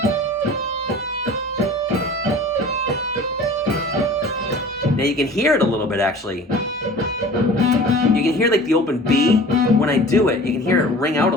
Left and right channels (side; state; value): both; normal; correlation 0.42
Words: now you can hear it a little bit actually. You can hear like the open B. When I do it, you can hear it ring out a